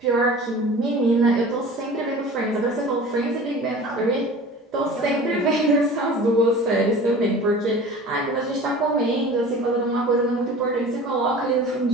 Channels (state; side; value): normal; both; correlation 0.40